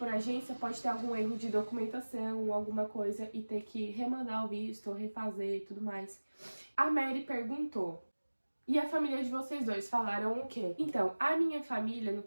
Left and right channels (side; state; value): both; inverted; correlation -1.00